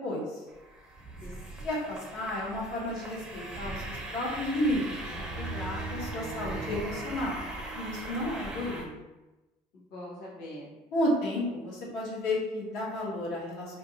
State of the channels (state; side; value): normal; both; correlation 0.48